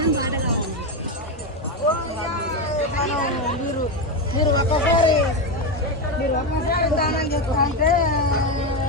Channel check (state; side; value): normal; both; correlation 0.12